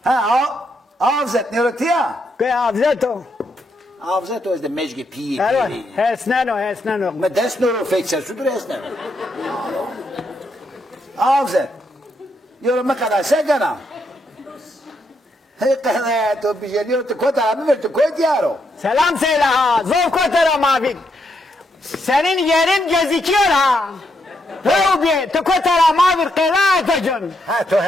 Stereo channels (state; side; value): normal; both; correlation 0.78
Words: Ha, avzet ne rötya? Che avzeto? Avzet o izde mežgi pije. Evo, hesneno. Ma desno fekser, sudur esne. Avzet. Yorum ne kadar segana. Hekane to bijeliyor to kota abi ver to koy diyaro. Selam söyle ha. Zor kotara mavi. Senin yerin gözüküyor ha. Rubi, tu kotara mavi kıraatacın. Ha to